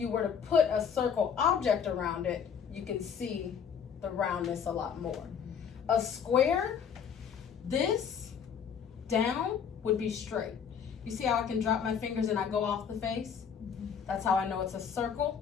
were to put a circle object around it, you can see the roundness a lot more. A square, this down would be straight. You see how I can drop my fingers and I go off the face? That's how I know it's a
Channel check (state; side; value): quieter; right; 7.3 dB